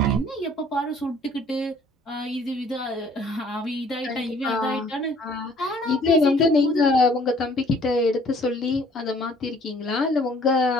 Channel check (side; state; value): both; normal; correlation 0.57